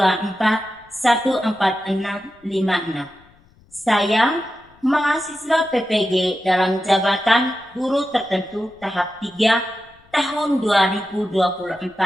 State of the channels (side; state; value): left; noise; rumble, 30 dB below the sound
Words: Saya mahasiswa PPG dalam jabatan guru tertentu tahap 3 tahun